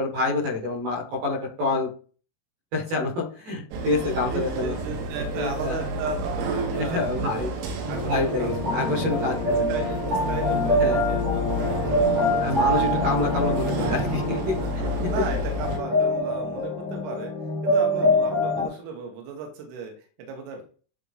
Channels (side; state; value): left; late; 18 ms